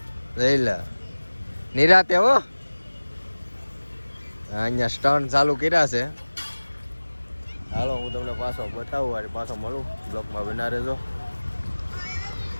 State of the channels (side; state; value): both; inverted; correlation -1.00